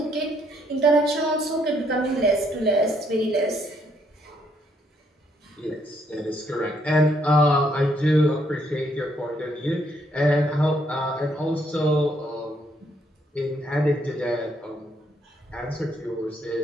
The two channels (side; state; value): both; normal; correlation 0.71